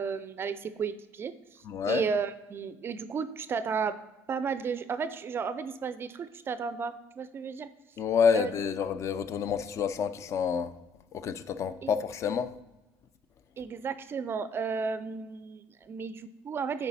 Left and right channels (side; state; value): both; normal; correlation 0.62